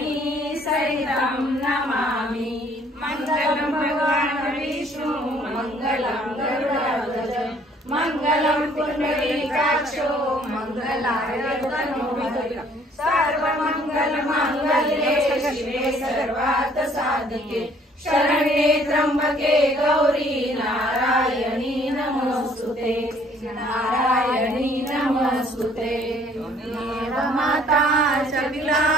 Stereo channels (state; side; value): normal; both; correlation 0.60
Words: सहितं नमामि। मङ्गलं भगवान् विष्णु मङ्गलं गरुडध्वज मङ्गलं पुण्डरीकाक्षो मङ्गलाय तनोहरि। सर्वमङ्गलमाङ्गल्ये शिवे सर्वार्थसाधिके शरण्ये त्र्यम्बके गौरी नारायणी नमोस्तुते नारायणी नमोस्तुते। त्वमेव माता च पिता